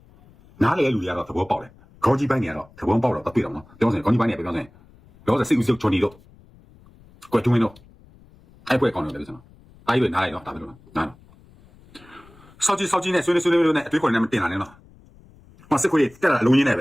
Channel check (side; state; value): left; noise; rumble, 26 dB below the sound